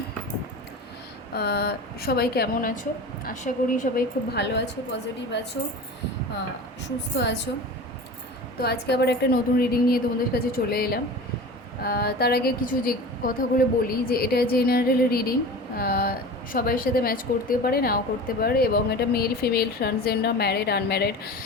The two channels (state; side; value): normal; both; correlation 0.34